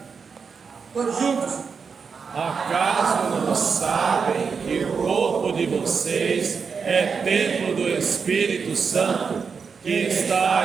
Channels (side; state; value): left; quieter; 5.7 dB